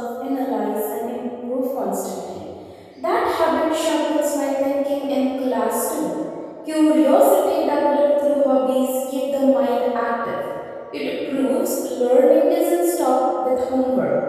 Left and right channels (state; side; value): identical; both; correlation 1.00